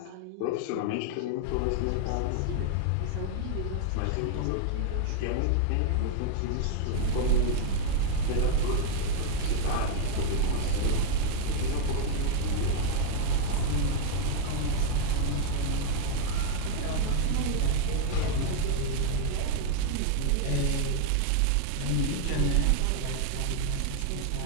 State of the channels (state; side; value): different; both; correlation 0.00